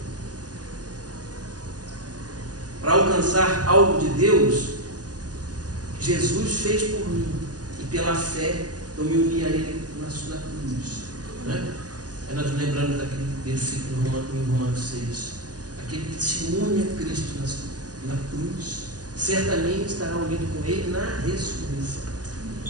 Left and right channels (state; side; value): late; left; 0.68 ms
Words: Para alcançar algo de Deus, Jesus fez por mim, e pela fé eu me uni a Ele na cruz. Né? Aí nós lembramos daquele versículo em Romanos 6. Aquele que se une a Cristo na cruz, certamente estará unido com Ele na ressurreição.